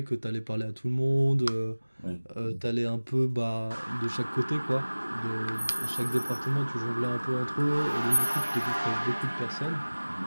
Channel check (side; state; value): both; inverted; correlation -1.00